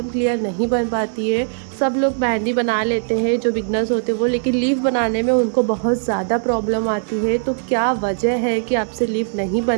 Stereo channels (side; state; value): left; silent; digital silence